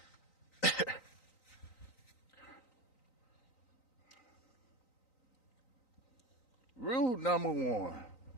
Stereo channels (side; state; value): right; late; 3.9 ms